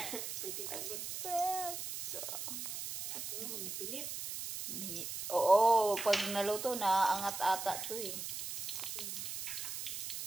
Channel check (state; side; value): noise; right; hiss, 5 dB below the sound